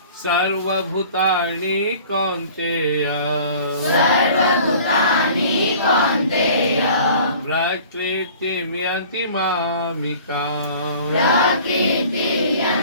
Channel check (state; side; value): inverted; both; correlation -0.47